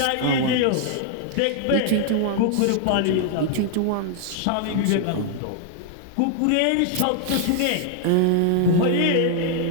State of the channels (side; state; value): both; different; correlation 0.00